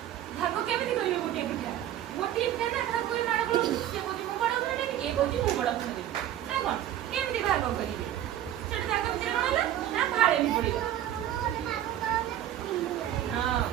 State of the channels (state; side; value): quieter; left; 12.1 dB